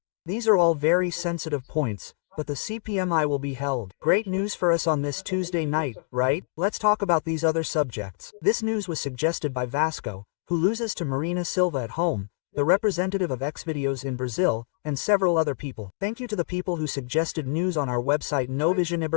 These are all very sensitive points, but the CPMI will be held. Great news for us on this Tuesday night, right? Let's talk about these other subjects. This news was suggested by Vasco, who loses to Marina Silva at home, the representative of Xvideos in Brazil, and several other people. Thank you to the people who suggested news on our website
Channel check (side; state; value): right; silent; digital silence